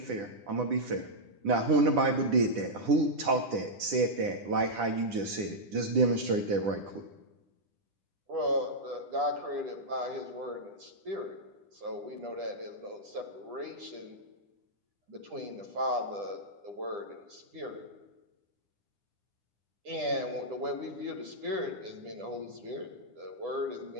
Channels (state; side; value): late; left; 10 ms